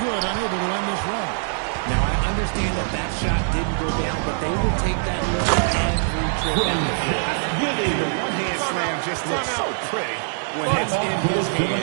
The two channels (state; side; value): silent; left; 63 dB below the other